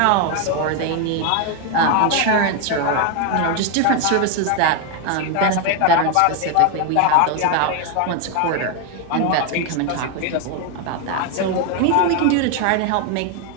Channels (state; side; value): different; both; correlation 0.01